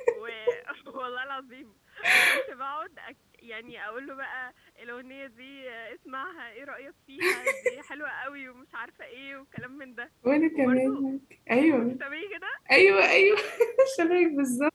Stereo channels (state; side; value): identical; both; correlation 1.00